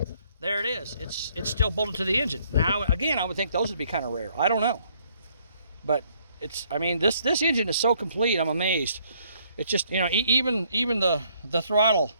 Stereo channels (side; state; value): both; inverted; correlation -0.66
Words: there it is. It's still bolted to the engine. Now again, I would think those would be kind of rare. I don't know, but I mean, this engine is so complete. I'm amazed. It's just, you know, even the throttle,